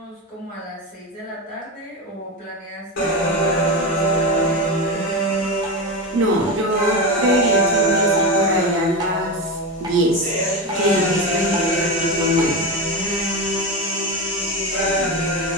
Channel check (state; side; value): normal; both; correlation 0.18